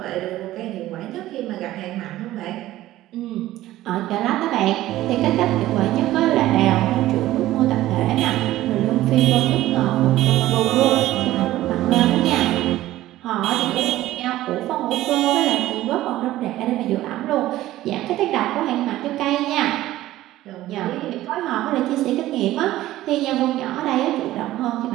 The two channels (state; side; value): quieter; left; 15.2 dB